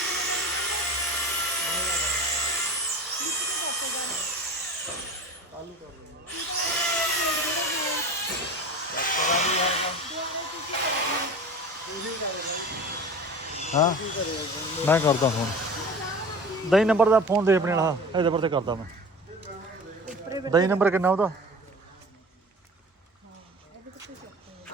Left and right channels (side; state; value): both; normal; correlation 0.36